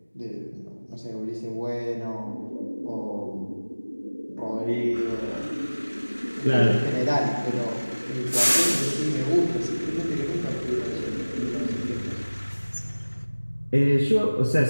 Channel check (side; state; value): both; inverted; correlation -1.00